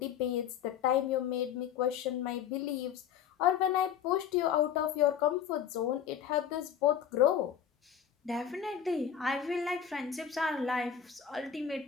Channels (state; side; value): quieter; right; 8.6 dB